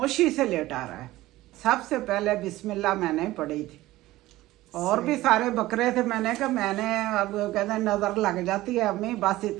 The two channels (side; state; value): left; quieter; 17.0 dB